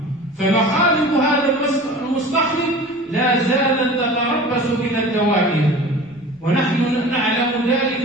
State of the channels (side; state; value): both; normal; correlation 0.39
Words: فمخالب هذا المستخرج لا زالت تتربص بنا الدوائر، ونحن نعلم ذلك